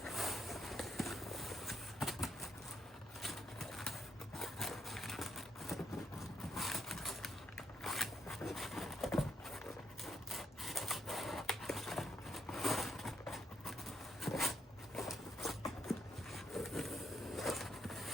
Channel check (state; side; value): normal; both; correlation 0.75